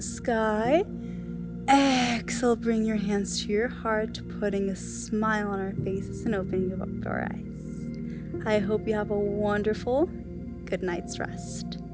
sky. Exhale, bring your hands to your heart, putting a smile on our faces and opening up our eyes. I hope you have a wonderful good night's rest.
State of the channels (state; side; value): identical; both; correlation 1.00